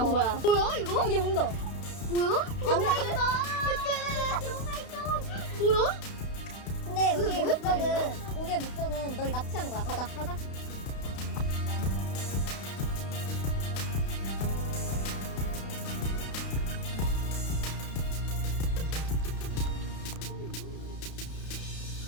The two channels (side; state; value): right; late; 32 ms